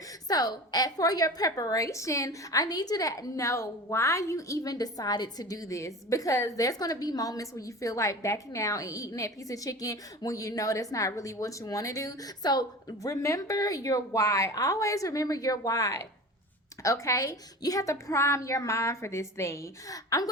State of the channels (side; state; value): both; normal; correlation 0.34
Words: So for your preparation, I need you to know why you even decided to do this, because there's going to be moments where you feel like backing out and eating that piece of chicken when you know that's not really what you want to do. So remember your why. Always remember your why. Okay, you have to prime your mind for this thing. I'm